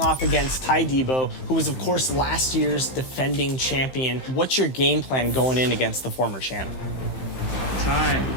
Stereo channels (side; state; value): right; late; 15 ms